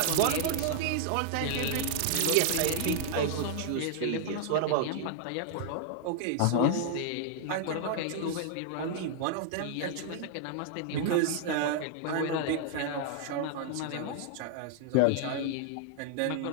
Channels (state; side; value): different; both; correlation -0.01